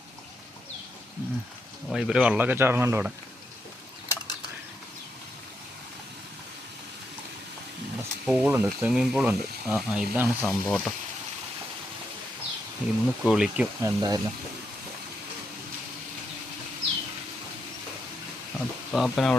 ഇവർ വെള്ളമൊക്കെ ചാടുന്നുണ്ട് ഇവിടെ. പൂളുണ്ട്, സ്വിമ്മിങ് പൂളുണ്ട്. ഇതാണ് സംഭവം കേട്ടോ. ഇന്ന് കുളിക്കും എന്തായാലും. പാപ്പൻ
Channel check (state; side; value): normal; both; correlation 0.81